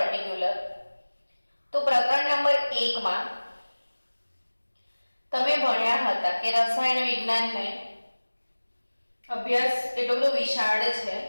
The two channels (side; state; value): both; inverted; correlation -1.00